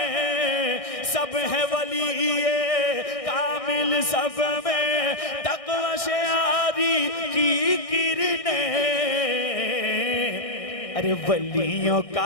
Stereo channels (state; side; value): late; right; 1.6 ms